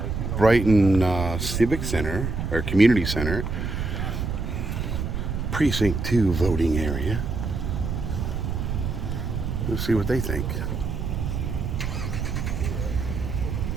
Brighton Civic Center, or Community Center, Precinct 2 voting area. Let's see what they think.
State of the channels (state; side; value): noise; right; rumble, 3 dB below the sound